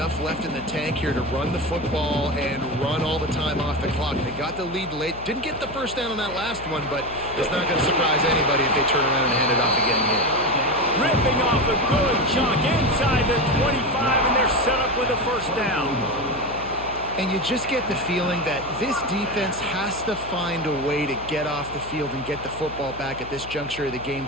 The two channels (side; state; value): left; noise; hum, 15 dB below the sound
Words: left in the tank here to run the football and run all the time off the clock. They got the lead late. Didn't get the first down on that last one, but it's not going to surprise anybody if they turn around and hand it off again here. Ripping off a good chunk inside the 25, and they're set up with a first down. And you just get the feeling that this defense has to find a way to get off the field and get the football back at this juncture of the game,